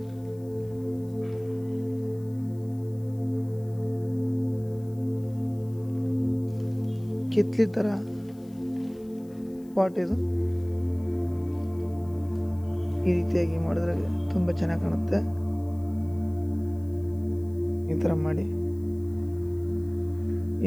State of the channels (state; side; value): noise; left; hiss, 29 dB below the sound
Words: ಕಿತ್ಲಿ ಥರ ಪಾಟ್ ಇದು. ಈ ರೀತಿಯಾಗಿ ಮಾಡಿದ್ರೆ ತುಂಬ ಚೆನ್ನಾಗಿ ಕಾಣುತ್ತೆ. ಈ ಥರ ಮಾಡಿ